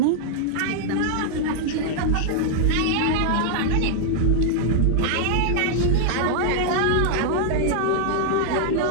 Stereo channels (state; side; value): different; both; correlation 0.00